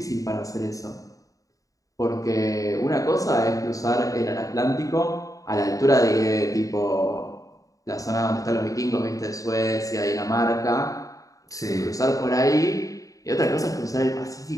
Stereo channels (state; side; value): late; right; 0.16 ms